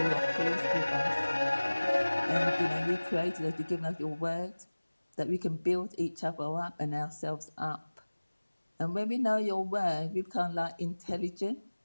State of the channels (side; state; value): both; inverted; correlation -1.00